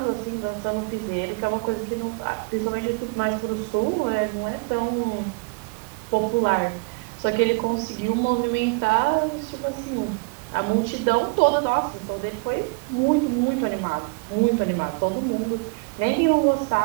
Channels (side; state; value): left; quieter; 32.2 dB